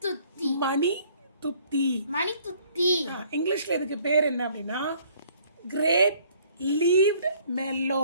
துத்தி. மணி துத்தி. மணி துத்தி. இங்கிலீஷ்ல இதுக்கு பேர் என்ன அப்படின்னா grape leaved mellow.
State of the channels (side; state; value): both; inverted; correlation -0.59